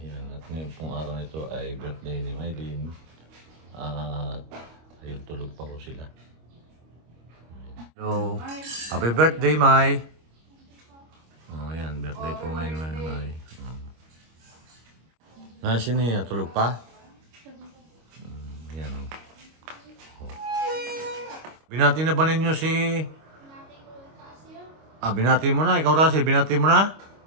at ngayon pong araw na ito ay birthday ni Mylene. At ayun, tulog pa ko sila. Hello. Happy birthday, May. Oh, ayan, birthday po ngayon, May. Nasa niya, tulog pa? Ayan. Oh. Binati na ba ninyo si... binati mo na. Ikaw, Russell, binati mo na?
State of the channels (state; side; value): late; left; 25 ms